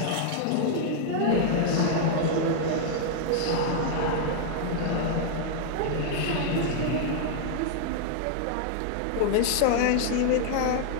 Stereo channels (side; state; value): both; different; correlation 0.00